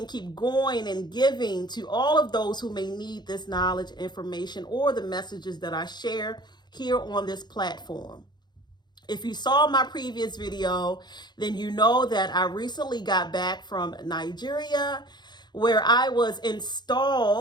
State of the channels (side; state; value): right; late; 0.21 ms